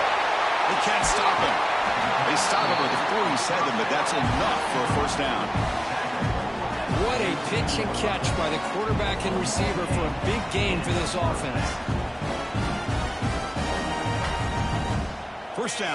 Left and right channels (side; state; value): both; identical; correlation 1.00